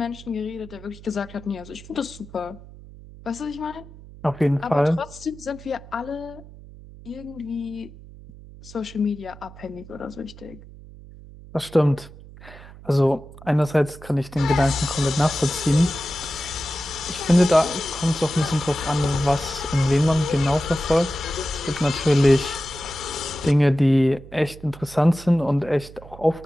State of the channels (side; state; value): right; noise; hum, 18 dB below the sound